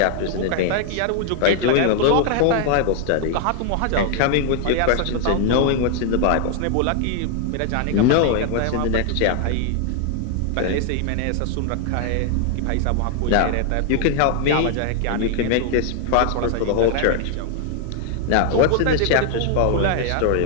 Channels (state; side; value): different; both; correlation 0.00